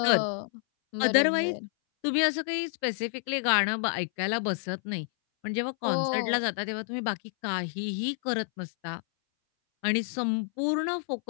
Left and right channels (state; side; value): silent; right; 59 dB below the other